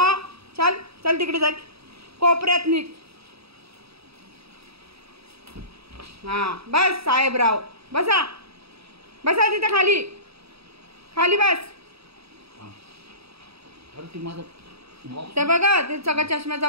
चल चल तिकडे जा, कोपऱ्यात निघ. हा बस साहेबराव, बसा बसा तिथं खाली खाली बस. ते बघा ते सगळं चष्म्याचा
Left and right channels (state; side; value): late; left; 0.77 ms